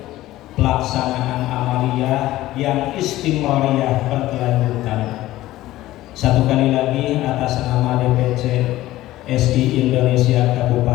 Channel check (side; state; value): right; quieter; 15.9 dB